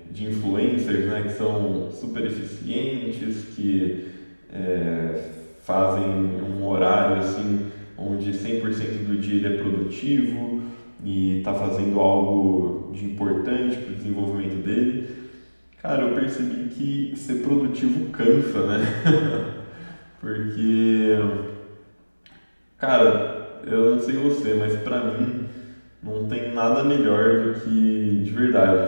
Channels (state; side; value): inverted; both; correlation -1.00